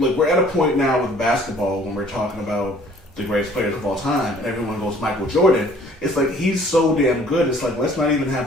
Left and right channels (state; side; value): normal; both; correlation 0.55